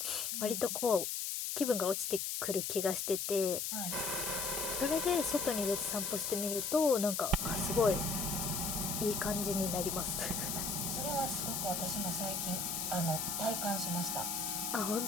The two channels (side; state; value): left; noise; hiss, 1 dB below the sound